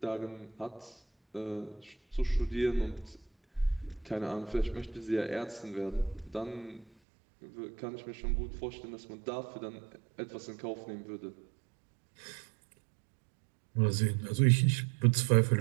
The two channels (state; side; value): drops out; left; at 6.9 s